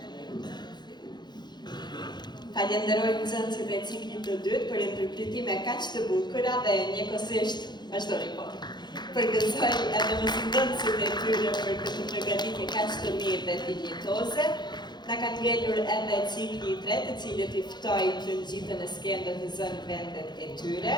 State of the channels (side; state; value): right; late; 0.21 ms